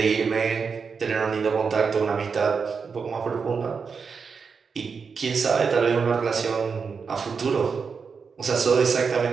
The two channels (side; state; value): left; quieter; 5.6 dB